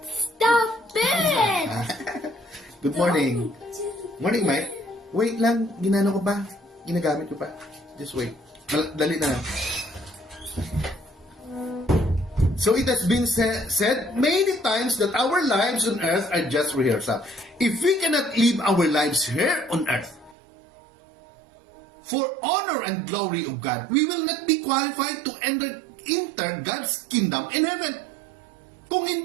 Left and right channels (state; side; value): drops out; left; at 20.4 s